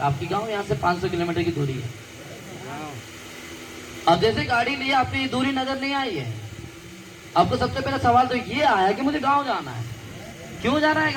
आपकी गाँव यहाँ से 500 किलोमीटर की दूरी है। अब जैसे गाड़ी लिए आपकी दूरी नजर नहीं आई है, आपको सबसे पहला सवाल तो ये आया कि मुझे गांव जाना है। क्यों जाना है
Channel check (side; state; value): both; identical; correlation 1.00